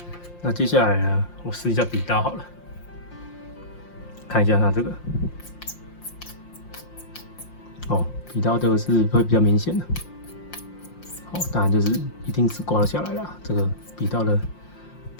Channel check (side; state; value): right; late; 5.7 ms